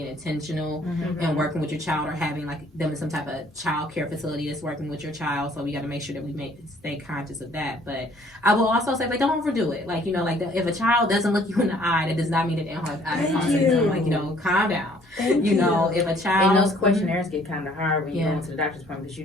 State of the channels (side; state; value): both; normal; correlation 0.59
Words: intentional and working with your child, or having like them in some type of child care facility that's working with your child. So we got to make sure that we stay conscious of that. But I will also say, don't overdo it. Like, if a child doesn't look you in the eye, that does not mean that they don't have autism. Like, calm down. If a child... And those questionnaires get kind of hard when you go into the doctor's appointment, because you